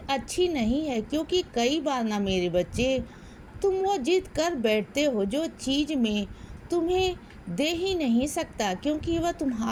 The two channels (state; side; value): identical; both; correlation 1.00